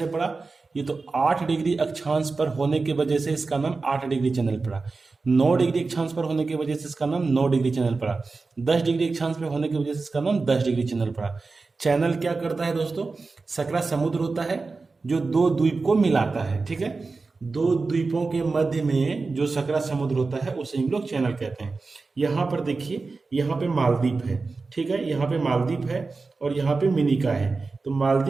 पड़ा? ये तो 8 डिग्री अक्षांश पर होने की वजह से इसका नाम 8 डिग्री चैनल पड़ा। 9 डिग्री अक्षांश पर होने की वजह से इसका नाम 9 डिग्री चैनल पड़ा। 10 डिग्री अक्षांश पर होने की वजह से इसका नाम 10 डिग्री चैनल पड़ा। चैनल क्या करता है दोस्तों? सकरा समुद्र होता है जो दो द्वीप को मिलाता है, ठीक है। दो द्वीपों के मध्य में जो सकरा समुद्र होता है उसे हम लोग चैनल कहते हैं। यहाँ पर देखिए, यहाँ पे मालदीव है, ठीक है, यहाँ पे मालदीव है और यहाँ पे मिनिका है। तो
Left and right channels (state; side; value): quieter; left; 4.0 dB